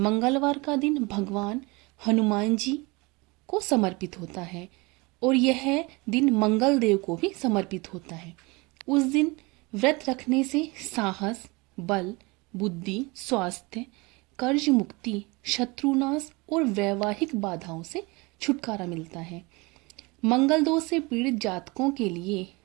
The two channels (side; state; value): left; quieter; 25.7 dB